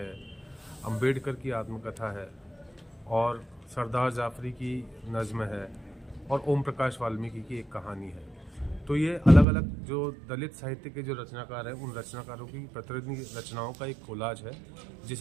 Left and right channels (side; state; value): left; drops out; at 9.5 s